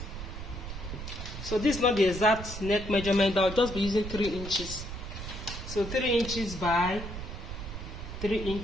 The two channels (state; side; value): noise; right; rumble, 8 dB below the sound